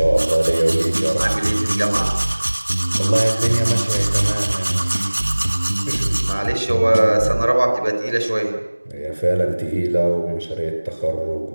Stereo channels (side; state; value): both; inverted; correlation -1.00